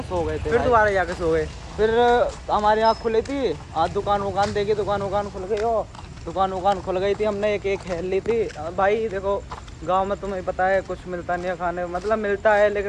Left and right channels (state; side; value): identical; both; correlation 1.00